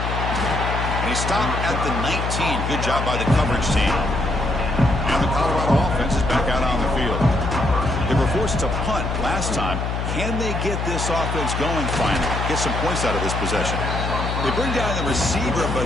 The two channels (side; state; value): left; noise; hum, 2 dB below the sound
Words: he stopped at the 19. Good job by the coverage team. And the Colorado offense is back out on the field. They were forced to punt last time. Can they get this offense going finally? Get some points out of this possession. They bring down the receiver,